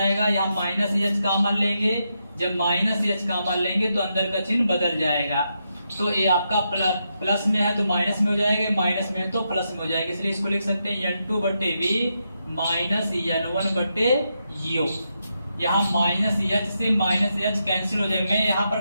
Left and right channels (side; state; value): both; inverted; correlation -0.83